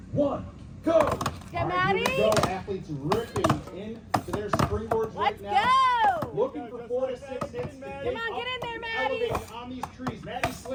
1, go! Get Maddie. Here we go. Athletes ripping into their springboards right now. Let's go! Looking for 4 to 6 hits. Come on, get in there, Maddie. Elevating on these trees. Maddie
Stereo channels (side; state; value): both; identical; correlation 1.00